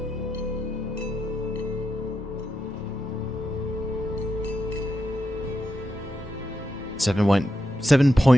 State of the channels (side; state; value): both; normal; correlation 0.85